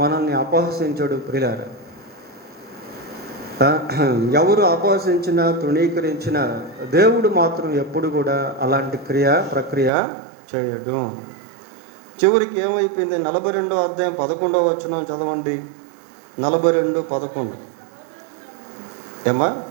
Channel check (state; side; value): drops out; left; at 9.9 s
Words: మనల్ని అపహసించడు ప్రియులారా. ఎవరు అపహసించినా తృణీకరించినా దేవుడు మాత్రం ఎప్పుడు కూడా అలాంటి ప్రక్రియ చేయడు. చివరికి ఏమైపోయింది? 42వ అధ్యాయం 11వ వచనం చదవండి. 42:11 ఏమా?